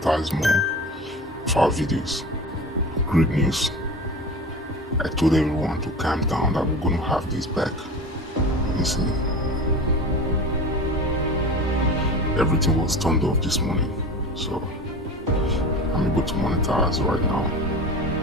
more of our videos. Great news. I told everyone to calm down that we're going to have this back. You see, everything was turned off this morning. So I'm able to monetize right now.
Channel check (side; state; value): both; normal; correlation 0.33